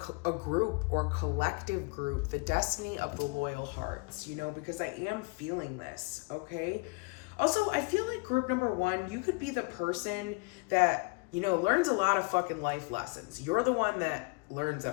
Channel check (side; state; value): right; quieter; 29.0 dB